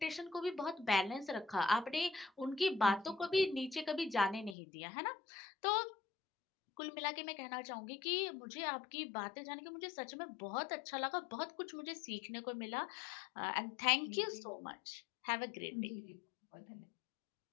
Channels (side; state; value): right; drops out; at 4.5 s